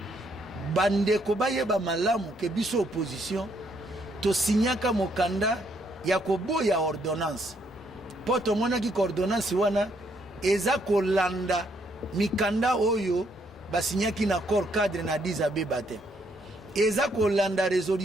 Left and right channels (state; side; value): normal; both; correlation 0.72